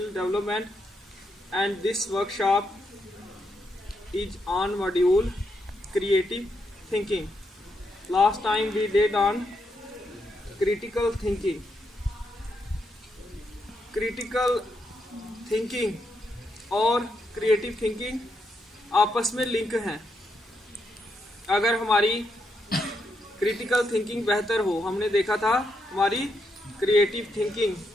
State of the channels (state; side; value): normal; both; correlation 0.81